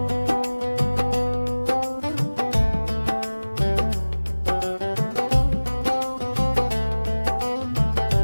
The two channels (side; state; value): both; inverted; correlation -1.00